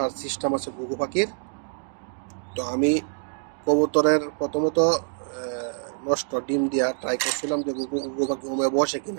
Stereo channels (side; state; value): left; silent; digital silence